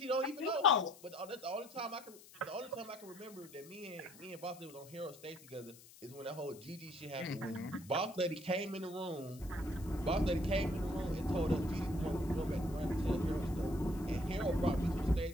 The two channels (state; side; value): noise; left; hiss, 20 dB below the sound